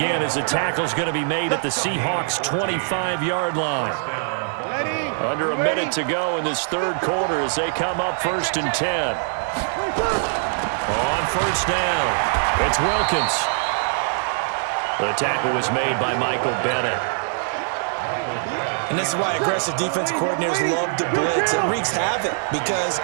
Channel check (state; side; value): silent; left; 61 dB below the other